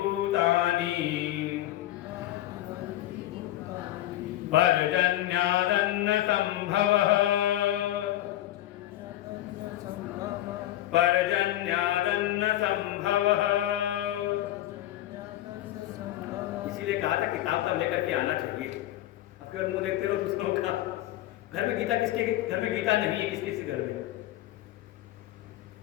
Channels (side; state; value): right; quieter; 14.3 dB